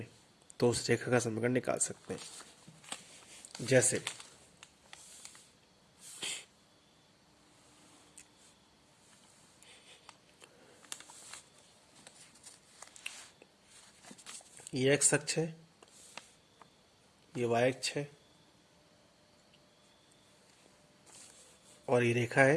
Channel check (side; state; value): both; identical; correlation 1.00